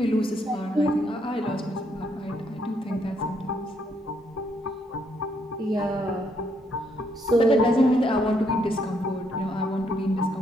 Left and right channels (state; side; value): normal; both; correlation 0.73